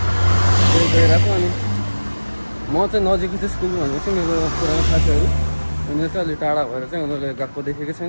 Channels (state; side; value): inverted; both; correlation -1.00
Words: त्यही गइरहेको। अनि म चाहिँ नजिकै चाहिँ स्कुल भनेको चाहिँ मेरो पुरानो साथीहरू, उनीहरू चाहिँ अलिक टाढा भएर चाहिँ उनीहरूले गएको देखेको